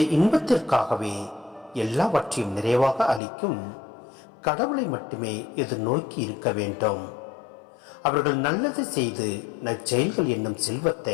இன்பத்திற்காகவே எல்லாவற்றையும் நிறைவாக அளிக்கும் கடவுளை மட்டுமே எதிர்நோக்கி இருக்க வேண்டும். அவர்கள் நல்லது செய்து நற்செயல்கள் என்னும்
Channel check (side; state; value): right; drops out; at 3.2 s